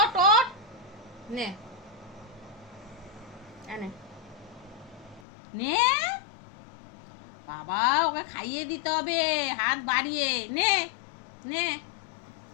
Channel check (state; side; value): drops out; right; at 5.2 s